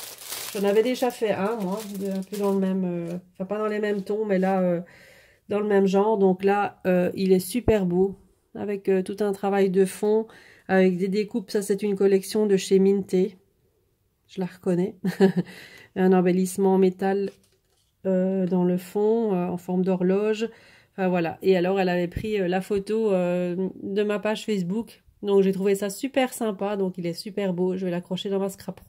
J'en avais déjà fait un, moi, un peu dans le même... enfin, pas dans les mêmes tons, mais là, dans le même genre. Donc là, il est super beau. Avec tout un travail de fond, avec des découpes. Ça, c'est une collection de chez Minté. Je la reconnais. Un embellissement en métal dans le fond, en forme d'horloge. Enfin, voilà. Et alors, elle avait pris la photo de ma page Facebook. Donc, j'ai trouvé ça super sympa. Donc, il est super beau. Je vais l'accrocher dans ma scrap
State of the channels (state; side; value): identical; both; correlation 1.00